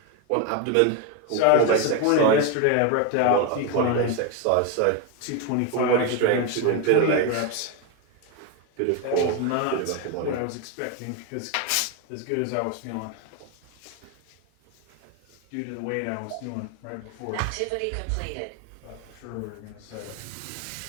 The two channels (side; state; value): both; different; correlation 0.02